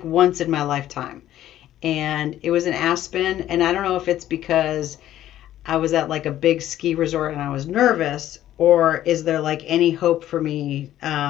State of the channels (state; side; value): quieter; right; 12.8 dB